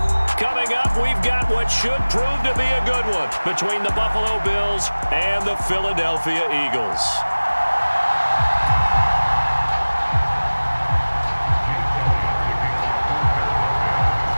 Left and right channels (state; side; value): inverted; both; correlation -1.00